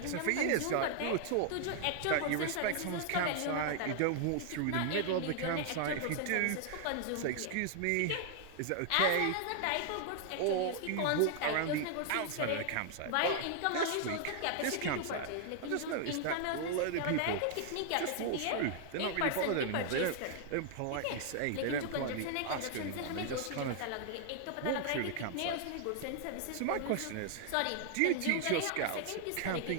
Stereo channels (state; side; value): different; both; correlation 0.00